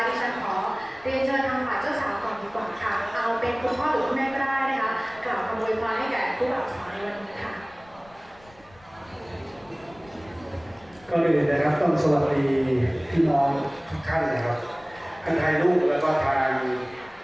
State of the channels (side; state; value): left; noise; rumble, 27 dB below the sound